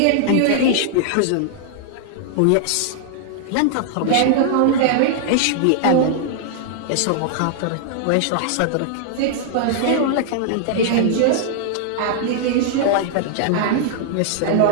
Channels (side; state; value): both; different; correlation -0.01